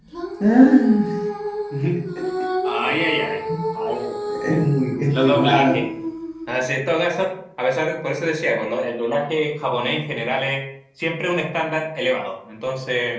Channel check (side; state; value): both; identical; correlation 1.00